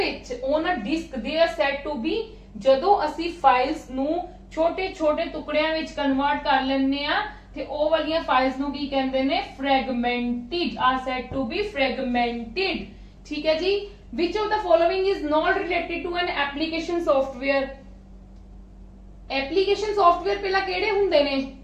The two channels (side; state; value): both; identical; correlation 1.00